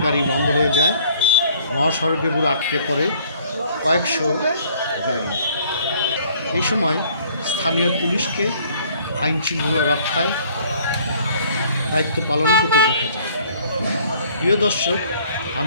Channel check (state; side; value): inverted; both; correlation -0.57